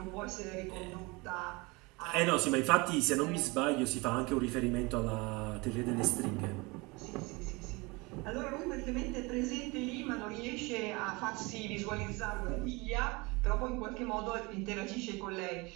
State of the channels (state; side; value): quieter; left; 25.5 dB